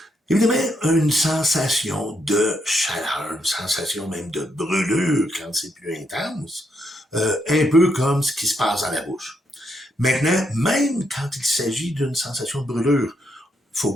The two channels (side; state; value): both; normal; correlation 0.77